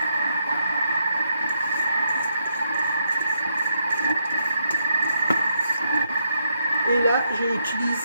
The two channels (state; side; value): inverted; both; correlation -0.78